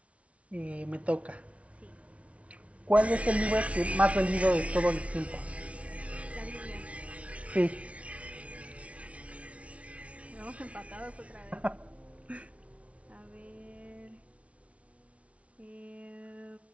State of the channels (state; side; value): late; left; 0.064 ms